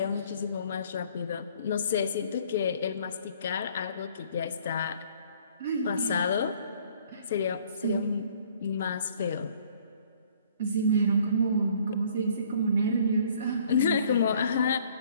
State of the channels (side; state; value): both; inverted; correlation -0.58